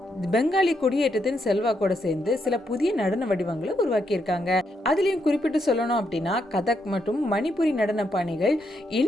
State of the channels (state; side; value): normal; both; correlation 0.79